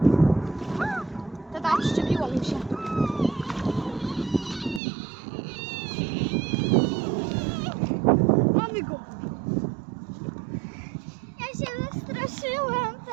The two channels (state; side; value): drops out; left; at 4.8 s